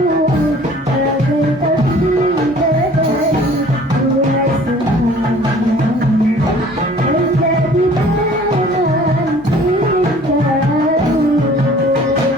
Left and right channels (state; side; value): normal; both; correlation 0.51